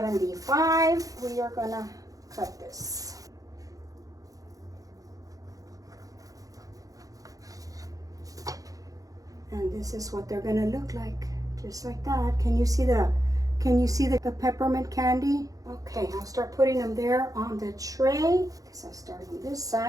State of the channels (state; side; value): late; left; 0.17 ms